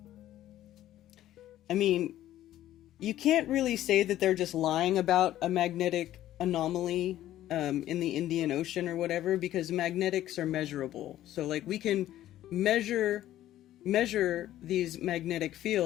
mean, you can't really say that they're just lying about a magnetic anomaly in the Indian Ocean or whatever, because magnetics are measurable. So we can measure these magnetic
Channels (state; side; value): quieter; right; 13.3 dB